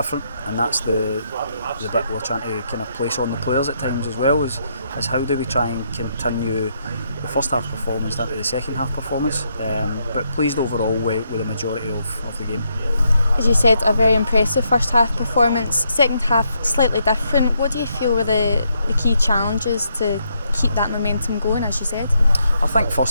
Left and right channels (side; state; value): both; inverted; correlation -0.77